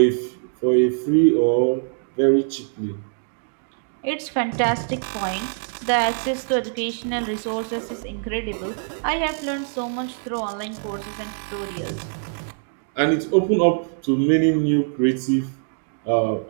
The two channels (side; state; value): left; silent; digital silence